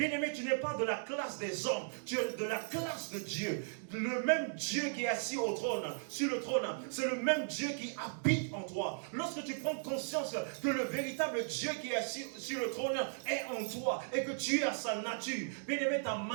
tu n'es pas de la classe des hommes, tu es de la classe de Dieu. Le même Dieu qui est assis au trône, sur le trône, c'est le même Dieu qui habite en toi. Lorsque tu prends conscience que le véritable Dieu qui est assis sur le trône est en toi et que tu es à sa nature, bien-aimé, ta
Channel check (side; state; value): left; silent; digital silence